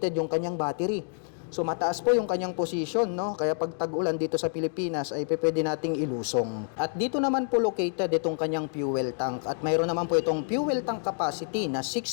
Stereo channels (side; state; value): right; silent; 59 dB below the other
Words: yung kanyang battery. So mataas po yung kanyang position, no? Kaya pag tag-ulan dito sa Pilipinas ay pwede nating ilusong. At dito naman po located itong kanyang fuel tank. At mayroon naman po itong fuel tank capacity na